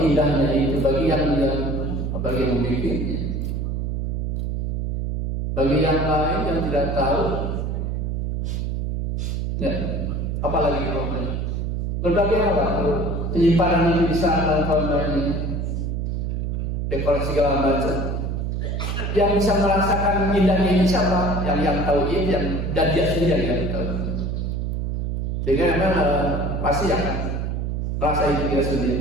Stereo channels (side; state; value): right; noise; hum, 1 dB below the sound